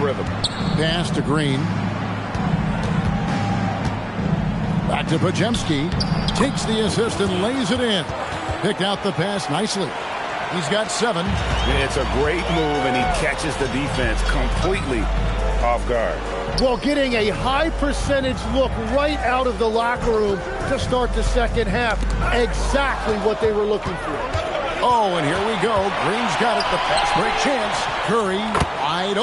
Pass to Green. Back to Podziemski. Takes the assist and lays it in. Picked out the pass nicely. He's got 7. It's a great move, and he catches the defense completely off guard. Well, getting a high percentage look right out of the locker room to start the second half. Exactly what they were looking for. Oh, and here we go. Green's got it. The fast break chance. Curry wide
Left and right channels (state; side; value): identical; both; correlation 1.00